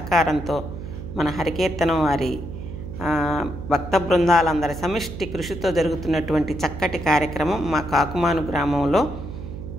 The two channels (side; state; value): right; noise; hum, 9 dB below the sound